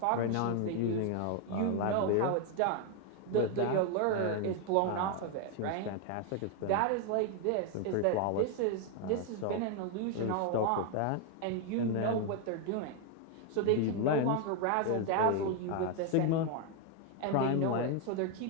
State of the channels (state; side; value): different; both; correlation 0.01